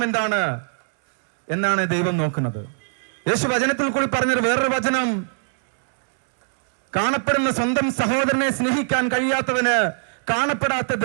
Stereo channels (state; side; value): silent; left; digital silence